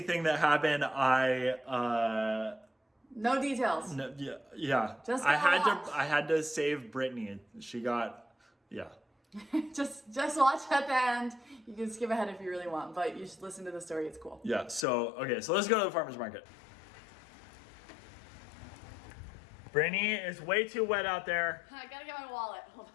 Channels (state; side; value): drops out; right; at 14.9 s